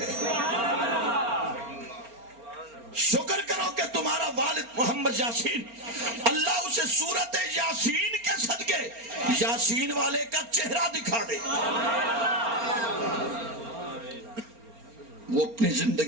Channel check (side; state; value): left; late; 4.3 ms